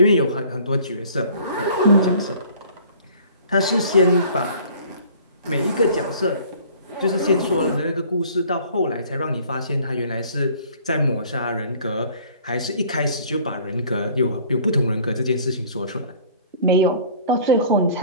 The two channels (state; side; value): inverted; both; correlation -0.51